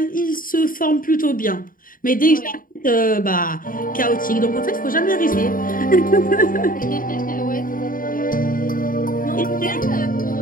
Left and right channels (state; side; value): late; right; 0.40 ms